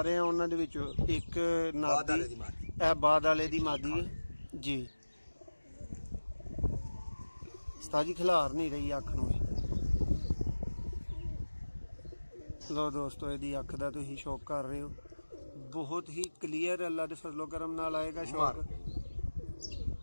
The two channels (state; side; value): inverted; both; correlation -1.00